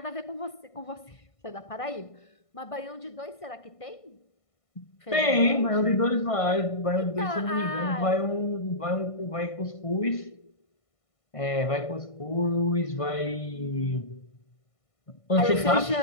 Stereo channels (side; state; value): right; late; 1.5 ms